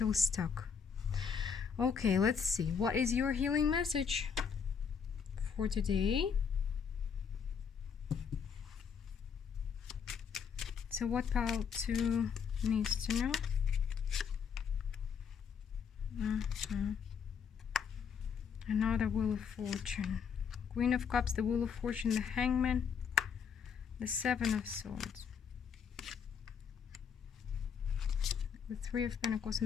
stuck. Okay, let's see. What is your healing message for today? So what pile 2 needs to know? Another Wheel of Fortune. Queen of Cups, the Wheel of Fortune, the Hangman, the 7 of Swords, the 3 of Pentacles,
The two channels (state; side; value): quieter; right; 6.7 dB